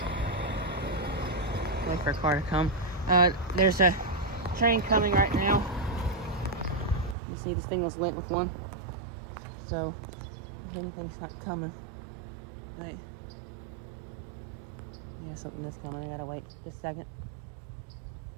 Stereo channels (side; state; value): left; drops out; at 7.2 s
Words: Wait for a car to come. There's a train coming right now. You see this thing was lit with one. So if anything's not coming. Right. Yeah, something is coming. I gotta wait just a second.